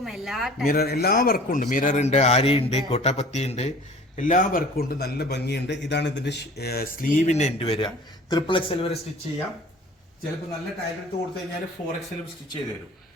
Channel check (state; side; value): normal; both; correlation 0.46